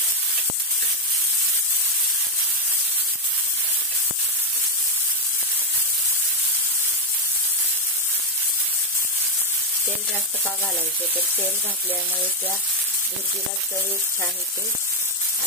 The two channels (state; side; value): normal; both; correlation 0.03